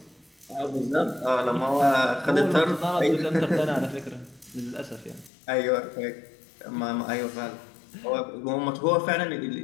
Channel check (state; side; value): drops out; right; at 5.3 s